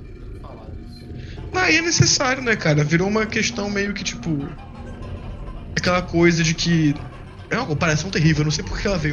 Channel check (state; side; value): identical; both; correlation 1.00